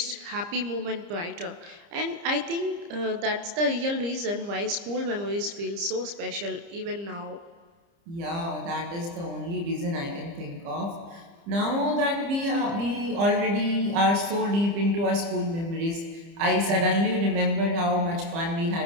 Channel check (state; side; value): late; left; 30 ms